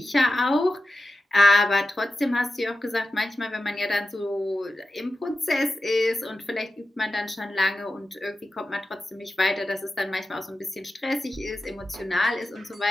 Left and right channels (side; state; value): both; normal; correlation 0.92